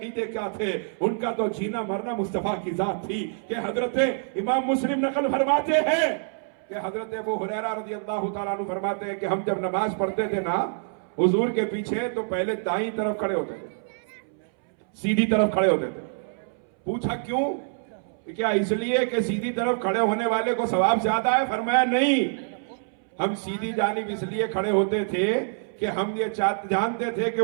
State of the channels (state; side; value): silent; left; 61 dB below the other